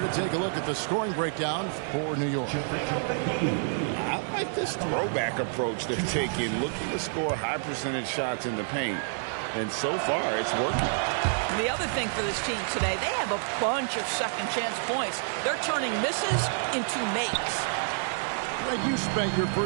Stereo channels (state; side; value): silent; left; 58 dB below the other